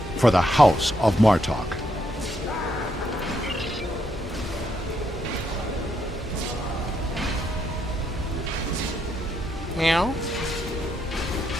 for the House of Martok. Meow.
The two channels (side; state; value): both; normal; correlation 0.77